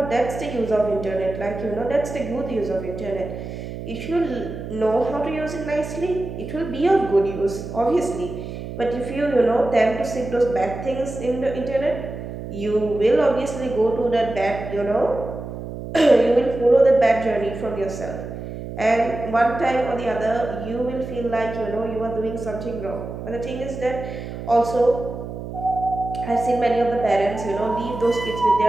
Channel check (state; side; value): noise; right; hum, 9 dB below the sound